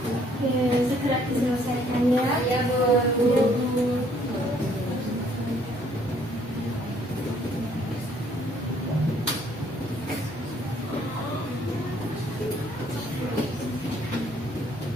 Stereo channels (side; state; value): both; normal; correlation 0.63